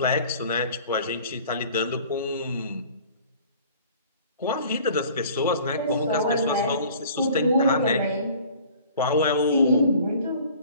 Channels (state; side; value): inverted; both; correlation -0.49